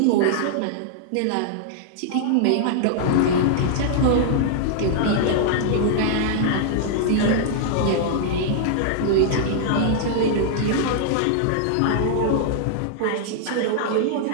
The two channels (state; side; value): different; both; correlation -0.01